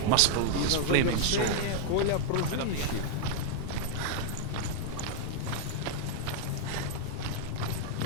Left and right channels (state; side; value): different; both; correlation -0.01